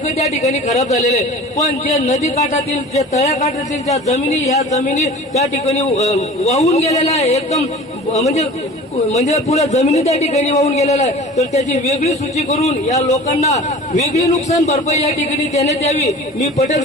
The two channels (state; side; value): normal; both; correlation 0.40